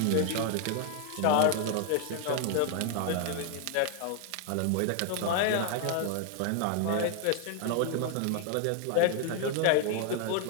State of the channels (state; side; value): different; both; correlation 0.00